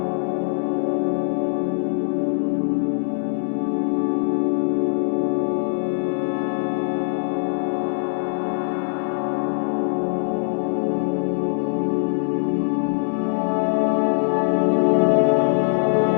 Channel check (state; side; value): silent; right; digital silence